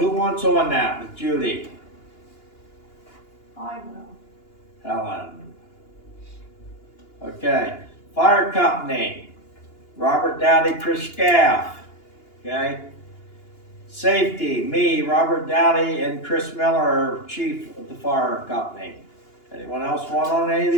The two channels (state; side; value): late; right; 2.9 ms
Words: wants on that with Judy? I will. Helen. Okay, fire company, Robert Dowdy, Chris Scaff, okay? Safety, me, Robert Dowdy, and Chris Miller are chief of the fire company. Anyone else want on any of